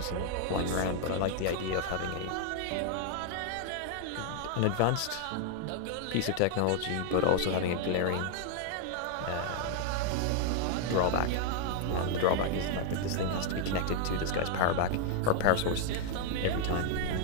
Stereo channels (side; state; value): both; different; correlation 0.00